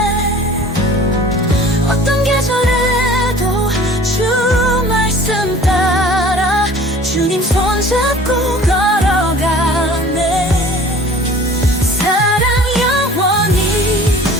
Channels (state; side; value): normal; both; correlation 0.46